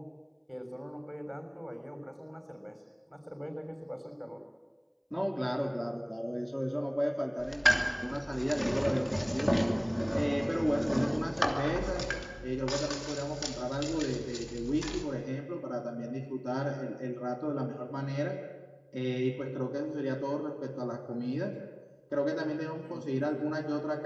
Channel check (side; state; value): both; identical; correlation 1.00